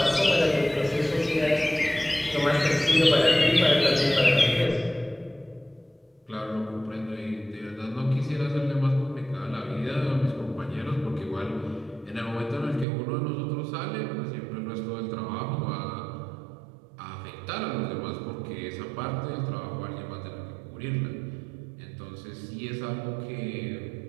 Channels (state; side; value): drops out; left; at 12.9 s